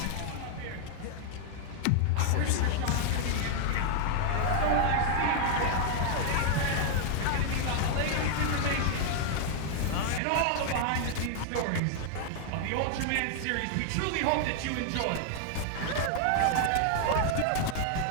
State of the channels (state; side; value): different; both; correlation 0.00